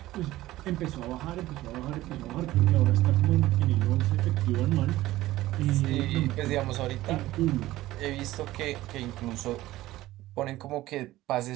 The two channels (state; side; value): quieter; left; 16.3 dB